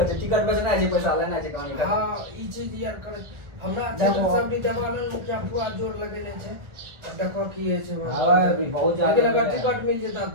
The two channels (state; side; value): late; left; 1.4 ms